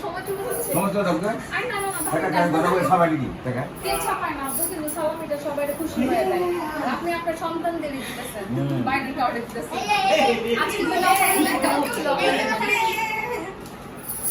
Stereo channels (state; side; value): identical; both; correlation 1.00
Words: সময় চলে যাচ্ছে। সমস্ত দরকার আই না একটা কাজ করব সবাই কি টাকা কে ছাপায় না, আপনি কিন্তু সালামিটা সবাই খুশি হয়ে যায়। আপনি আপনার সন্তানদের দিতেছেন, বাইরের কাউকে দিতেছেন। আজকে তো একটা হচ্ছিল